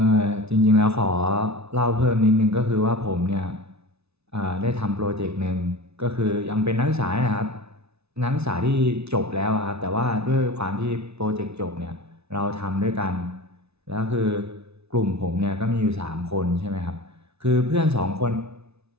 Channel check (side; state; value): left; late; 0.80 ms